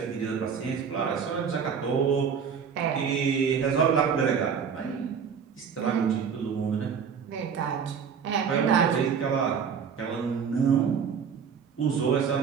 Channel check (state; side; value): quieter; left; 6.8 dB